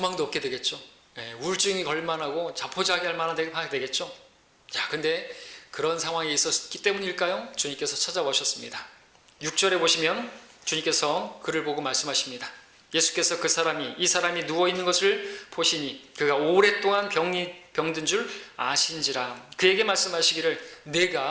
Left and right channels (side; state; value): both; identical; correlation 1.00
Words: 없게 되겠죠. 우울증이 걸만하고 자포자기할 만한 데가 되겠죠. 자, 근데 그런 상황이 있었기 때문일까요? 주님께서 찾아오셨습니다. 6절에 보시면 주님께서 그를 보고 말씀하십니다. 예수께서 이 사람이 누워있는 것을 보시니 그가 오랫동안 병든 줄 아신지라. 그에게 말씀하시기를